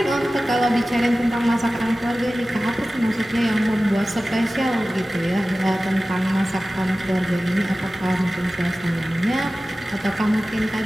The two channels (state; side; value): normal; both; correlation 0.96